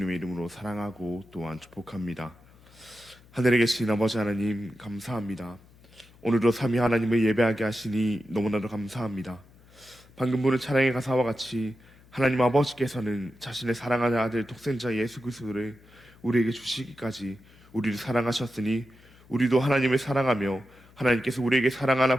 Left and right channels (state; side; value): noise; left; hum, 26 dB below the sound